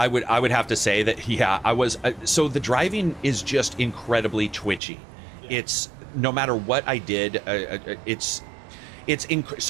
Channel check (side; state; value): left; drops out; at 4.8 s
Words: would have to say that, yeah, I was... so the driving is just incredibly twitchy. Yeah. It's... No matter what I did,